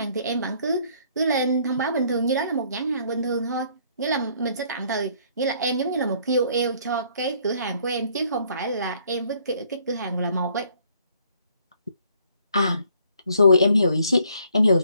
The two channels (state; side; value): inverted; both; correlation -0.64